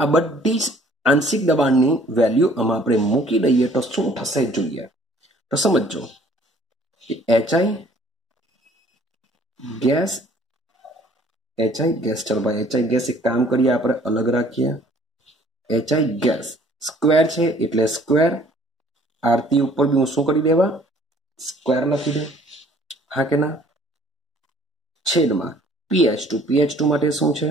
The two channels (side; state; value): both; normal; correlation 0.57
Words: આ બધી જ આંશિક દબાણની વેલ્યુ આમાં આપણે મૂકી દઈએ તો શું થશે જોઈએ. તો સમજો HI ગેસ ચલો ભાઈ HI ગેસ એક કામ કરીએ આપણે અલગ રાખીએ. HI ગેસ સ્ક્વેર છે એટલે સ્ક્વેર. આરતી ઉપર બી હું શું કરી દેવા? સ્ક્વેર લખી દઉં. હા કે ના? છેદમાં PH2 માટે શું છે?